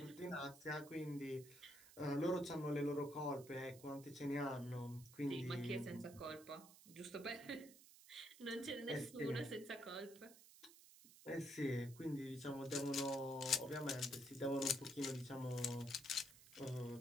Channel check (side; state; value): right; noise; hiss, 19 dB below the sound